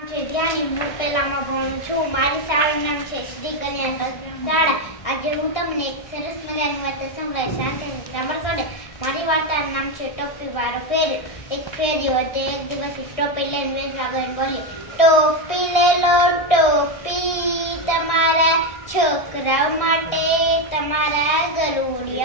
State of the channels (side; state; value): right; late; 1.6 ms